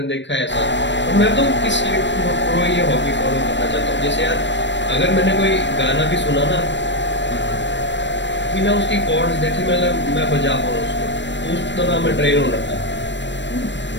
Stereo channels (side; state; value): right; late; 0.53 ms